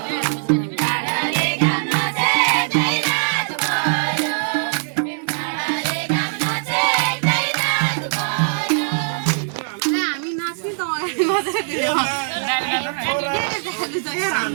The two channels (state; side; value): silent; left; digital silence